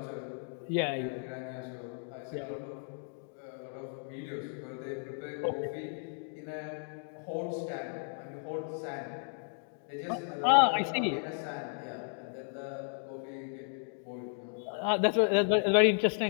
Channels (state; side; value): silent; right; 55 dB below the other